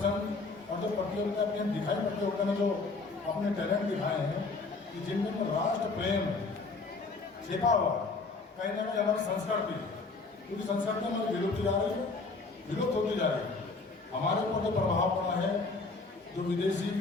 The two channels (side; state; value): right; quieter; 3.9 dB